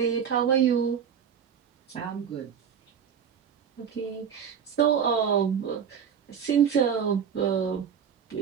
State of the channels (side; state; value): left; quieter; 7.6 dB